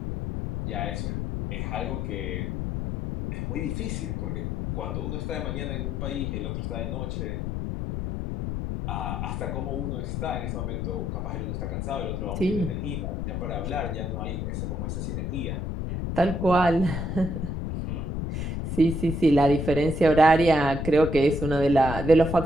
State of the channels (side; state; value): left; noise; rumble, 3 dB below the sound